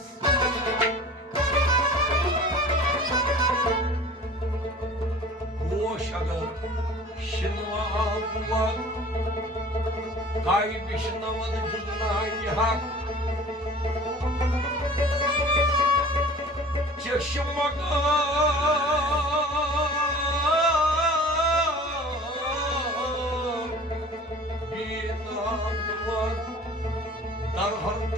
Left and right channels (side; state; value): both; normal; correlation 0.44